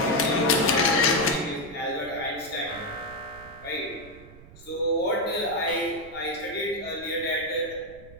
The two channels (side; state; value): right; noise; rumble, 19 dB below the sound